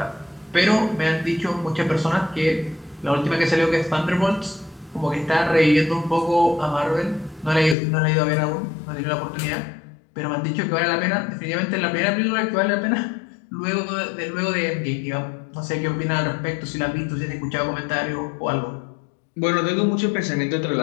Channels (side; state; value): right; drops out; at 7.8 s